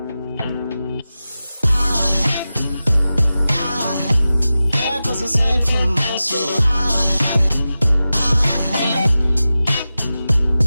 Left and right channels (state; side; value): inverted; both; correlation -0.94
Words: There goes a sight from my soul.